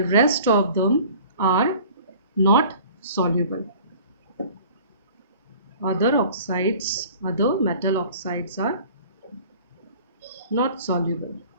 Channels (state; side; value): inverted; both; correlation -0.47